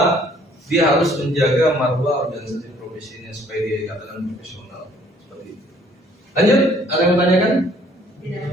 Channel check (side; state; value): both; normal; correlation 0.60